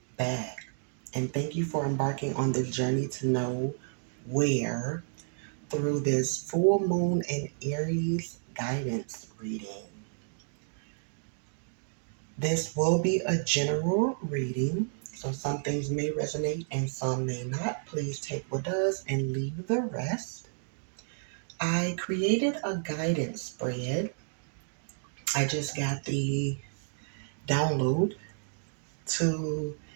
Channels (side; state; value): left; silent; digital silence